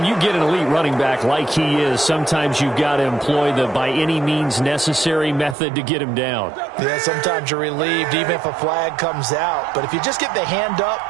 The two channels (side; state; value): left; drops out; at 5.6 s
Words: you get an elite running back like he is, sometimes you've got to employ the by any means necessary method to get him down. Yeah, sometimes you're relieved even if a flag comes out. But if you just get the hand up